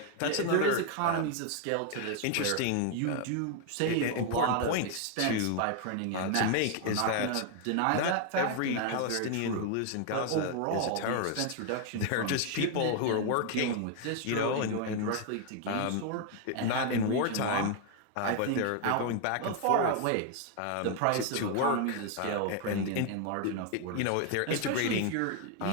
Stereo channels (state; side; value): different; both; correlation 0.01